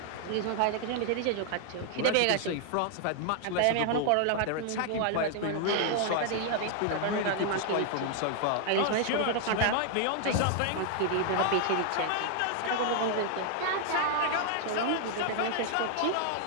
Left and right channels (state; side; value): different; both; correlation 0.00